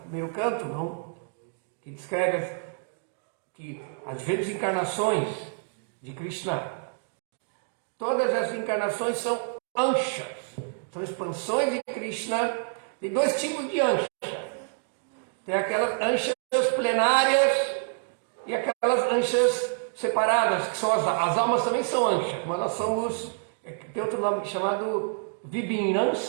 primeiro canto, não? Que descreve que as diferentes encarnações de Krishna, todas as encarnações são anshas, são expansões de Krishna. Tem dois tipos de anshas. Tem aquelas anshas plenárias e aquelas anshas separadas, que são as almas também são anshas, mas nós somos, tem outro nome chamado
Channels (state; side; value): silent; left; digital silence